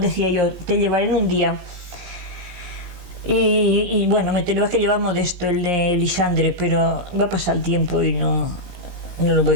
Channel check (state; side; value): late; left; 17 ms